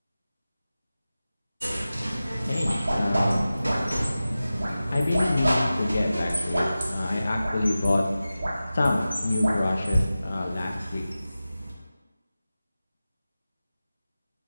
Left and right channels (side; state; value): both; inverted; correlation -0.95